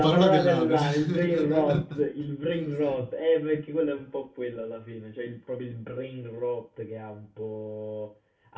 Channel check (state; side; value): identical; both; correlation 1.00